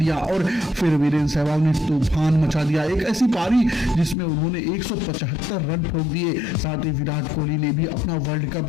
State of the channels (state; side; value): drops out; right; at 4.2 s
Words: और फिर वीरेंद्र सहवाग ने तूफान मचा दिया। एक ऐसी पारी जिसमें उन्होंने 175 रन ठोक दिए। साथ ही विराट कोहली ने भी अपना वर्ल्ड